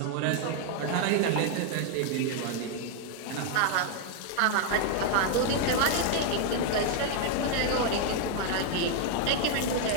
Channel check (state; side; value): different; both; correlation 0.00